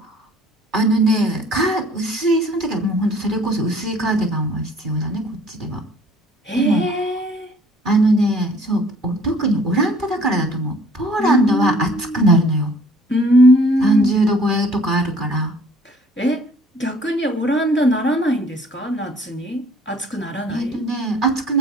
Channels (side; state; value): both; normal; correlation 0.55